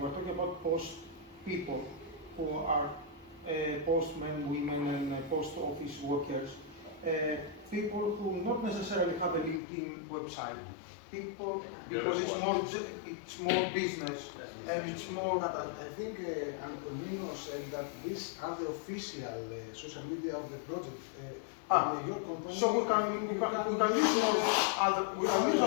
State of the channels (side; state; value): right; drops out; at 9.6 s